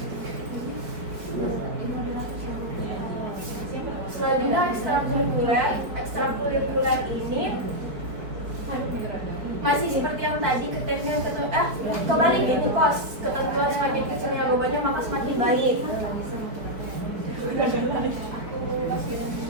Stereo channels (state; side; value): late; left; 4.6 ms